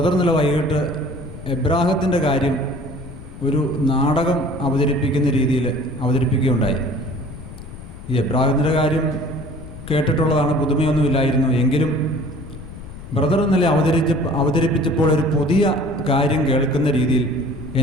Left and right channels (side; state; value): left; noise; rumble, 14 dB below the sound